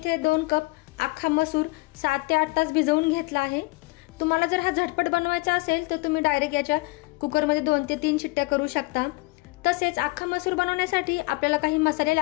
2 कप अख्खा मसूर 7 ते 8 तास भिजवून घेतला आहे। तुम्हाला जर हा झटपट बनवायचा असेल तर तुम्ही डायरेक्ट याच्या कुकर मध्ये 2 ते 3 शिट्ट्या करू शकता। तसेच अख्खा मसूर बनवण्यासाठी आपल्याला काही मसाले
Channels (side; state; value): right; quieter; 24.3 dB